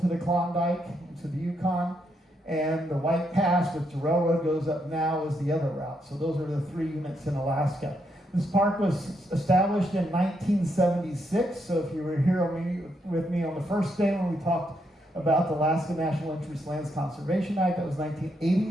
the Klondike, into the Yukon. And the White Pass, which the railroad goes up now, is the other route. So those are the 3 units in Alaska. This park was established in 1976. So if you were here with me on the first day when we talked about the Alaska National Interest Lands Conservation Act, that was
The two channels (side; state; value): both; normal; correlation 0.78